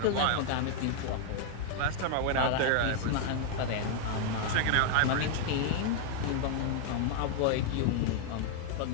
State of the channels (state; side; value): different; both; correlation 0.00